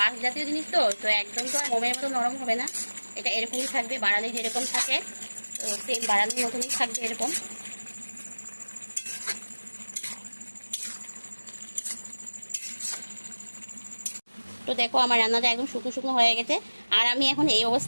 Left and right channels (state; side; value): inverted; both; correlation -1.00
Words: জাতীয় জিনিস তো তো একদম তো আর মোমের মতো নরম হবে না, এটা এরকমই থাকবে, বাড়ালি যেরকম থাকে তো সেম বাড়ালির মতনই থাকবে এরকম। তো দেখো আমার রান্নাটা একদম শুকনো শুকনো হয়ে গেছে, আর আমি এখন এই